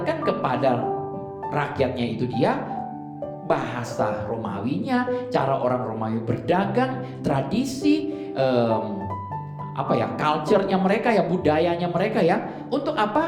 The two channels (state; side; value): identical; both; correlation 1.00